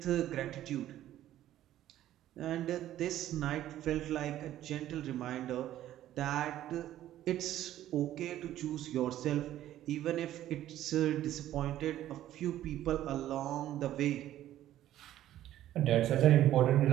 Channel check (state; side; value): quieter; left; 12.9 dB